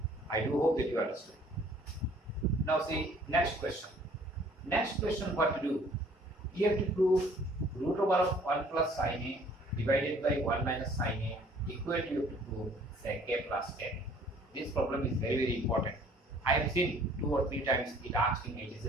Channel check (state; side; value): normal; both; correlation 0.56